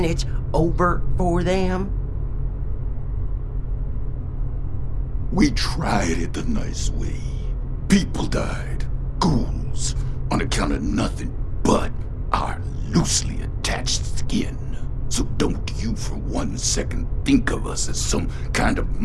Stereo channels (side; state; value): both; identical; correlation 1.00